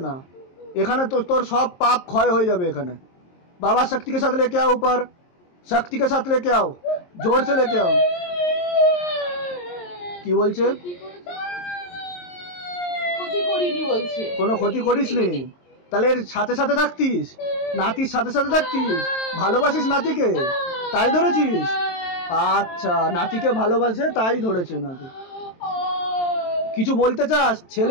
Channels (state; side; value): late; right; 23 ms